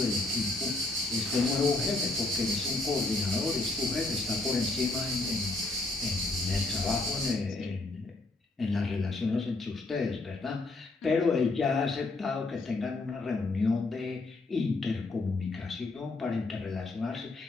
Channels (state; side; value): quieter; right; 3.2 dB